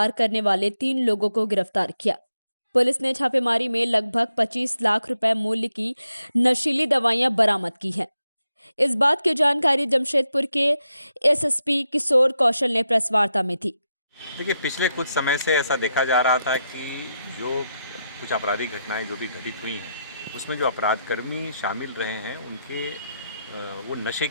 करने वाले 3 लोगों को गिरफ्तार किया। पुलिस ने छापेमारी में लगभग 25 लाख रुपए मूल्य की नशीली दवाइयां बरामद की हैं। इस बात की जानकारी जमशेदपुर के एसएसपी किशोर कौशल ने प्रेस वार्ता में दी। देखिए, पिछले कुछ समय से ऐसा देखा जा रहा था कि जो कुछ आपराधिक घटनाएं जो भी घटित हुई हैं, उसमें जो अपराधकर्मी शामिल रहे हैं उनके वो नशे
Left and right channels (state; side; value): inverted; both; correlation -0.85